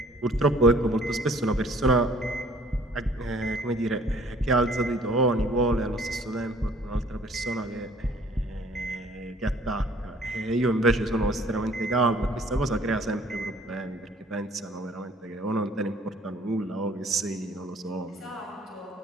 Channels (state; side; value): normal; both; correlation 0.56